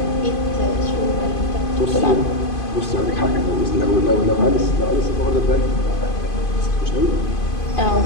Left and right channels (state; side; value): late; right; 2.5 ms